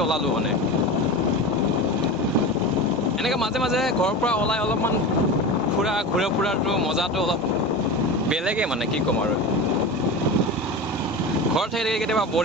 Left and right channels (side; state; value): both; normal; correlation 0.27